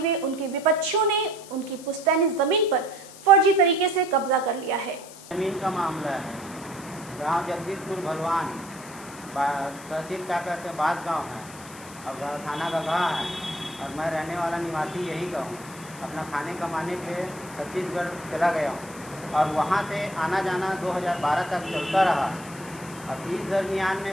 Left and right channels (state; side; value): noise; left; hiss, 17 dB below the sound